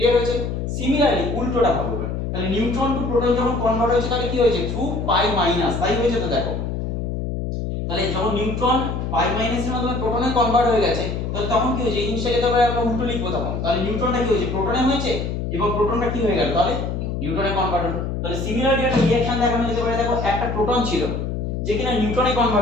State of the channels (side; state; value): left; noise; hum, 3 dB below the sound